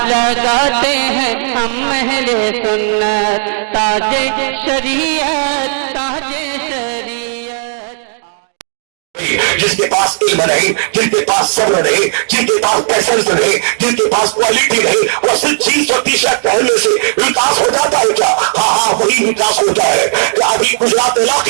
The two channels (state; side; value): silent; left; digital silence